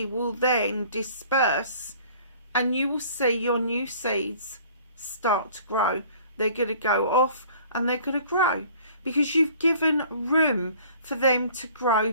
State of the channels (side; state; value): both; inverted; correlation -0.52